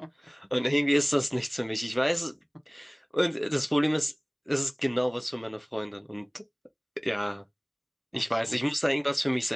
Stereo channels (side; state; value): both; identical; correlation 1.00